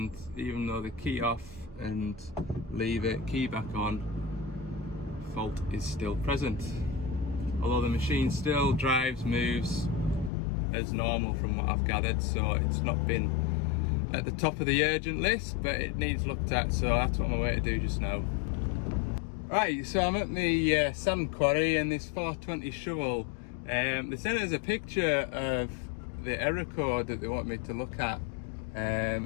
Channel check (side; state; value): right; drops out; at 10.3 s